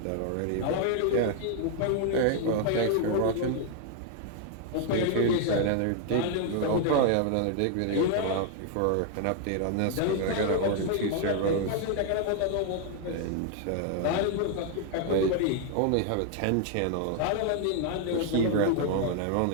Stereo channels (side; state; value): both; different; correlation 0.00